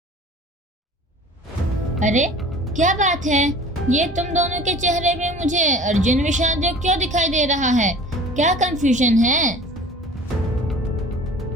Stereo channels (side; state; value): both; normal; correlation 0.44